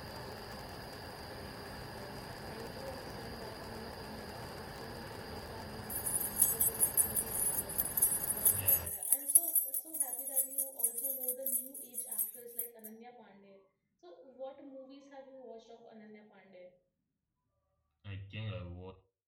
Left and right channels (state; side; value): identical; both; correlation 1.00